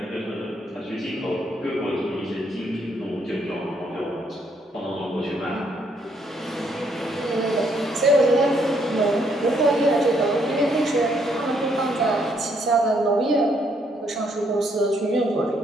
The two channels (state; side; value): normal; both; correlation 0.71